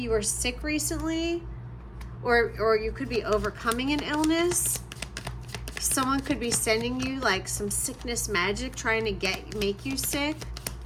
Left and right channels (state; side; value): identical; both; correlation 1.00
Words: were sick recently, or you could be overcoming an illness. Someone could be sending you like some sickness magic, trying to make you sick.